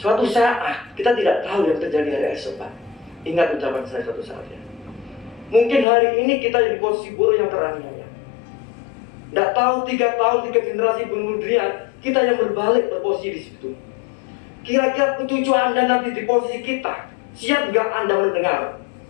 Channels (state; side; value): drops out; right; at 5.9 s